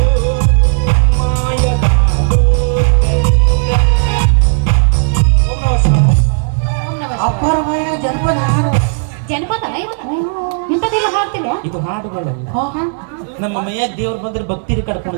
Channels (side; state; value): left; silent; digital silence